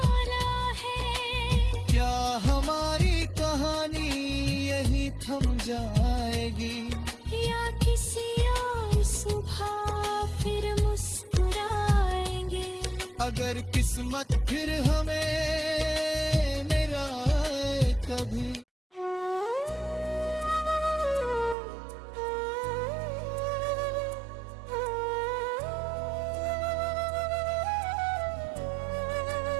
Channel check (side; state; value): left; drops out; at 21.6 s